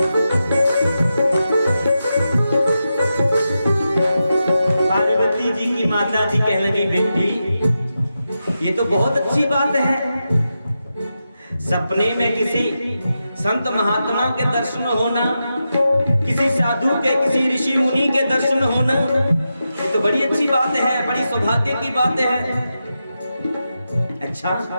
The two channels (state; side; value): inverted; both; correlation -0.89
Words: पार्वती जी की माता जी कहने लगी, बेटी ये तो बहुत अच्छी बात है, सपने में किसी संत महात्मा के दर्शन होना, किसी साधु के, किसी ऋषि मुनि के दर्शन होना, ये तो बड़ी अच्छी बात है, बड़ी सौभाग्य की बात है। अच्छा,